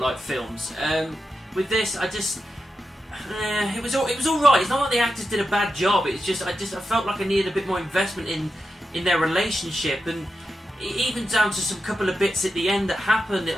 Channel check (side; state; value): both; normal; correlation 0.89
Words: films. With this, it was alright. It's not like the actors did a bad job, it's just, I felt like I needed a bit more investment in their relationship, and even down to some couple of bits at the end that happened.